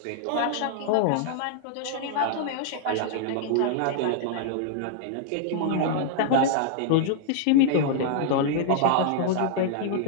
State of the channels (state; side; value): different; both; correlation -0.01